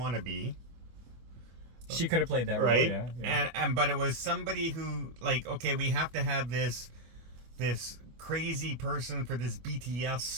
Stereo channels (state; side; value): late; left; 25 ms